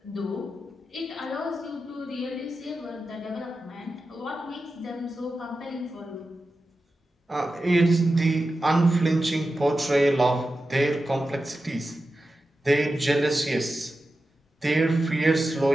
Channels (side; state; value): both; normal; correlation 0.92